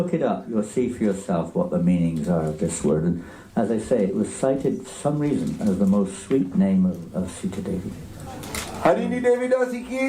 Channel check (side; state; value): both; identical; correlation 1.00